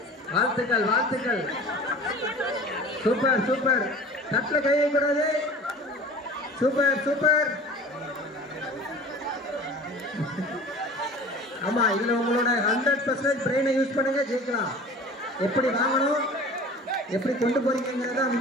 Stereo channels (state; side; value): normal; both; correlation 0.41